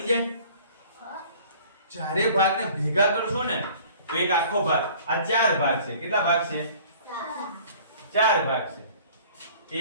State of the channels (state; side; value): inverted; both; correlation -0.50